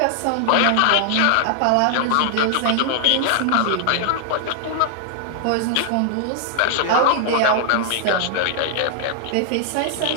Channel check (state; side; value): different; both; correlation 0.00